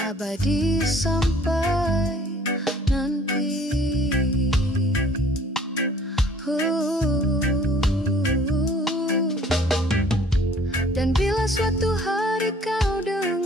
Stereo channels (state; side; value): normal; both; correlation 0.55